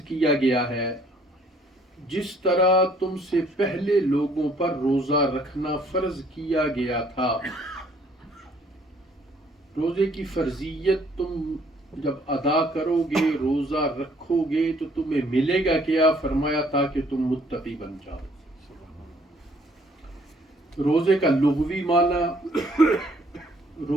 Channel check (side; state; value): both; normal; correlation 0.62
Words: کیا گیا ہے جس طرح تم سے پہلے لوگوں پر روزہ رکھنا فرض کیا گیا تھا۔ روزے کی فرضیت تم جب ادا کرو گے، روزہ رکھو گے تو تمہیں ملے گا کیا؟ فرمایا تاکہ تم متقی بن جاؤ۔ روزے کا لغوی معنی،